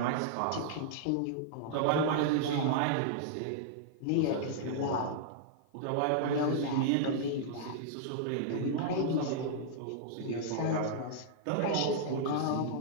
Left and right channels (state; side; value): different; both; correlation -0.01